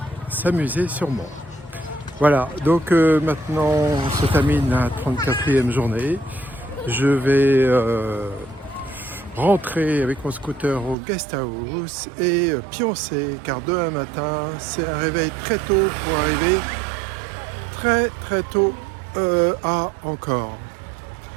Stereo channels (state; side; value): drops out; left; at 11.0 s